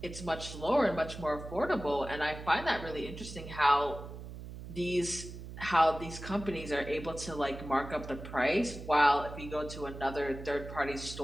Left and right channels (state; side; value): noise; right; hum, 11 dB below the sound